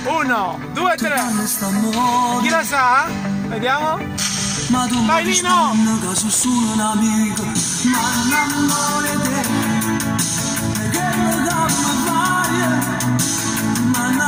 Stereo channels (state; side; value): identical; both; correlation 1.00